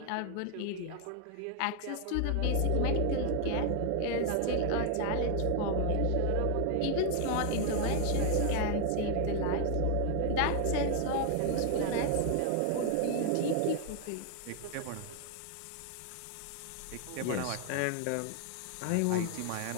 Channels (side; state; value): both; different; correlation 0.00